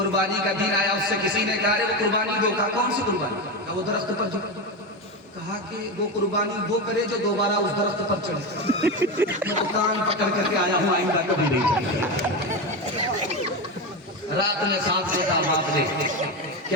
का दिन आया, उससे किसी ने कहा वो कुर्बानी दो। कहा कौन सी कुर्बानी? कहा वो दरख्त पर जो। कहा कि वो कुर्बानी वो करे जो दोबारा उस दरख्त पर चढ़े। मैं तो कान पकड़ करके आया हूँ, आइंदा कभी नहीं चढ़े। रात में सांस लेता बाप ने कि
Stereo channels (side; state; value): both; normal; correlation 0.17